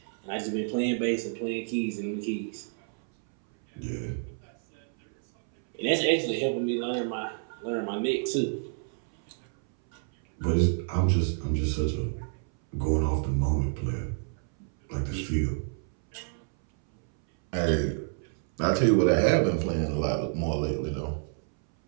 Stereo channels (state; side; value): silent; left; 59 dB below the other